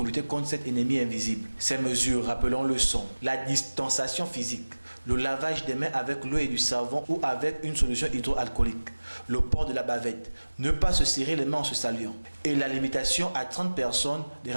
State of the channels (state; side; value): inverted; both; correlation -1.00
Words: lutter contre cet ennemi invisible. Ces mesures, rappelons-le, sont la distanciation physique, le lavage des mains avec l'eau et du savon ou avec une solution hydroalcoolique, le port de la bavette, ne pas se serrer les mains en se saluant et la limitation à 30 personnes des